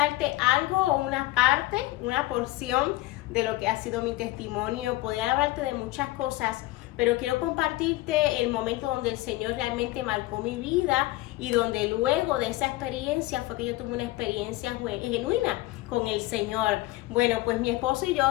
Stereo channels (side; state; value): right; quieter; 18.4 dB